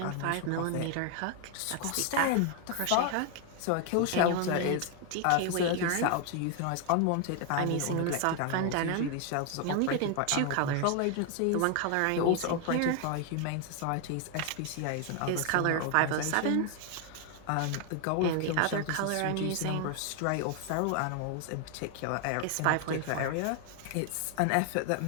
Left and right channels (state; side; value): different; both; correlation 0.00